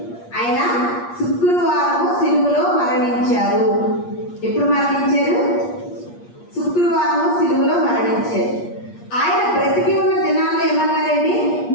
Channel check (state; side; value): late; right; 8.5 ms